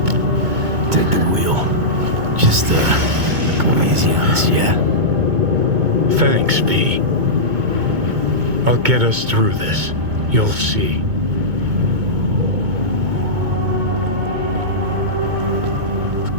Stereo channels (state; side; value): late; left; 2.2 ms